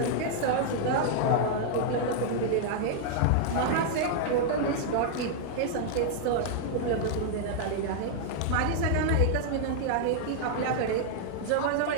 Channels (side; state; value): both; different; correlation -0.01